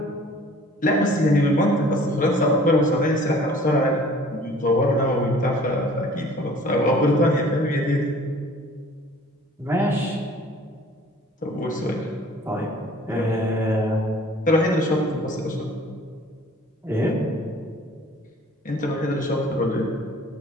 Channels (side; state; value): both; normal; correlation 0.51